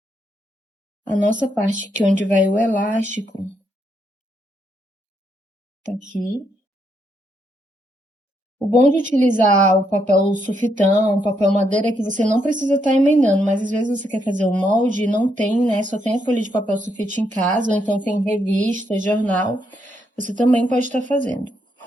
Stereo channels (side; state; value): both; normal; correlation 0.77